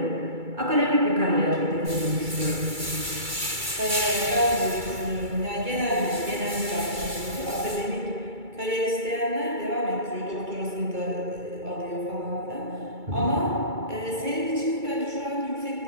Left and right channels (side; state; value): left; late; 2.3 ms